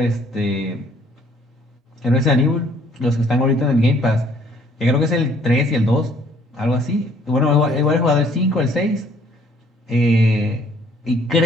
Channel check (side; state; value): both; normal; correlation 0.61